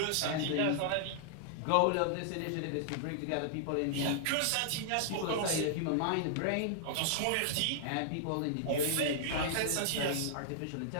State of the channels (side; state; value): both; different; correlation -0.01